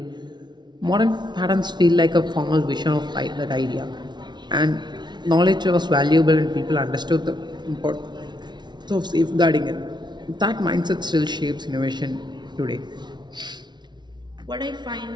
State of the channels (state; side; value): late; left; 0.21 ms